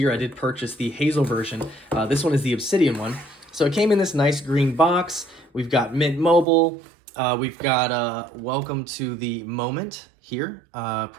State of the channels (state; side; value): drops out; left; at 6.5 s